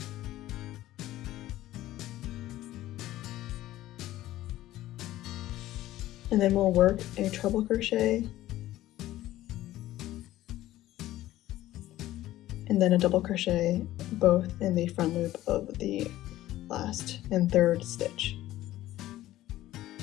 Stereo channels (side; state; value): right; quieter; 15.0 dB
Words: And then we'll work a treble crochet, and then a double crochet both in the front loop of the last and third stitch.